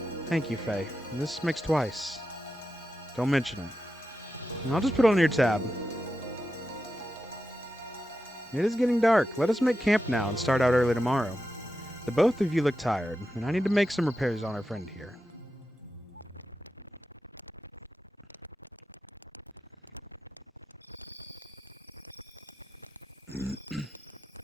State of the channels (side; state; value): both; normal; correlation 0.90